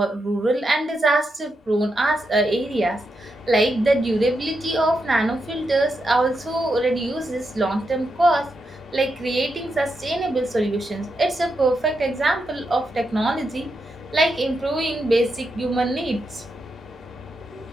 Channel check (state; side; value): normal; both; correlation 0.84